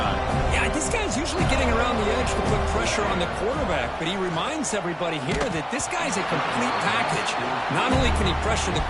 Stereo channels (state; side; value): identical; both; correlation 1.00